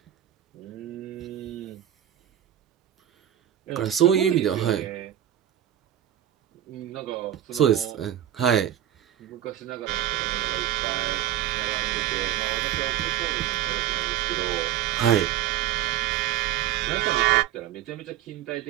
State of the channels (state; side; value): quieter; left; 11.6 dB